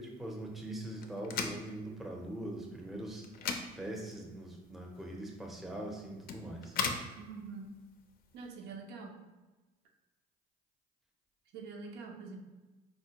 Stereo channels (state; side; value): normal; both; correlation 0.38